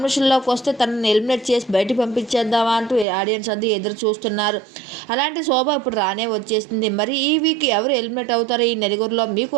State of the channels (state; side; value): drops out; left; at 3.1 s